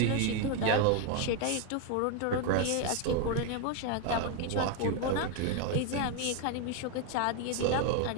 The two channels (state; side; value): different; both; correlation 0.01